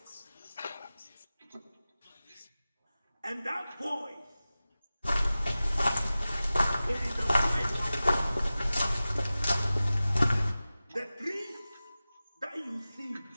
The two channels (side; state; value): both; inverted; correlation -0.96